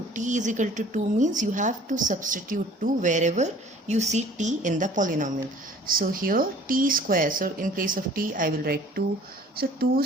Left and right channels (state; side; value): normal; both; correlation 0.51